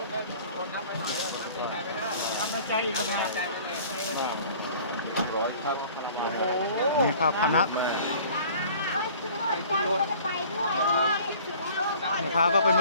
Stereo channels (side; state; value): both; inverted; correlation -0.49